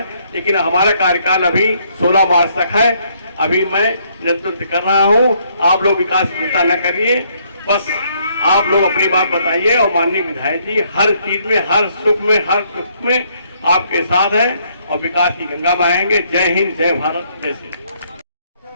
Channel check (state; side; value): inverted; both; correlation -0.69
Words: लेकिन हमारा कार्यकाल अभी 16 मार्च तक है। अभी मैं नेतृत्व कर रहा हूं। आप लोग विकास की चिंता न करिए, बस आप लोग अपनी बात बताइए और माननीय विधायक जी हर चीज में, हर सुख में, हर दुख में आपके साथ हैं और विकास की गंगा बहाएंगे। जय हिंद, जय भारत, जय श्री